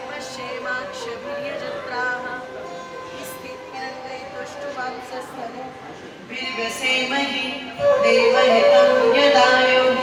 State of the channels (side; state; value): both; identical; correlation 1.00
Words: पश्येमाक्षभिर्यजत्राः स्थिरैरङ्गैस्तुष्ट्वांसस्तनूभिर्व्यसेमहि देवहितं यदायुः।